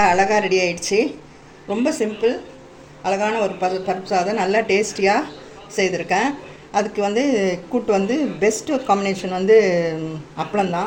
ரெடி ஆயிடுச்சு. ரொம்ப சிம்பிள், அழகான ஒரு பருப்பு சாதம் நல்லா டேஸ்டியாக செய்திருக்கேன். அதுக்கு கூட்டு பெஸ்ட்டு காம்பினேஷன்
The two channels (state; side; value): identical; both; correlation 1.00